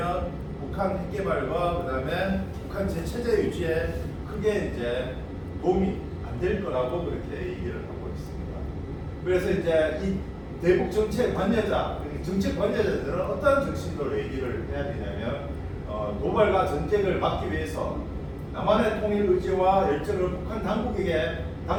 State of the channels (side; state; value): both; identical; correlation 1.00